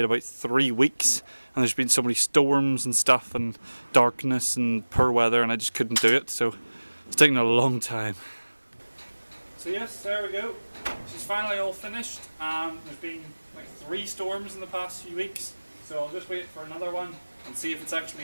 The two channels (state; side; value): inverted; both; correlation -1.00